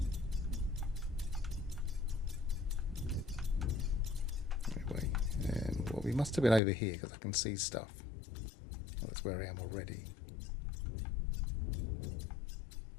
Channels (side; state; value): right; drops out; at 6.6 s